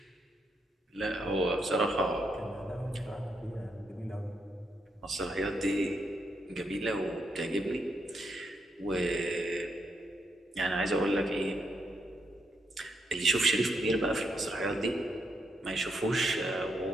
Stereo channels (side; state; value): both; normal; correlation 0.79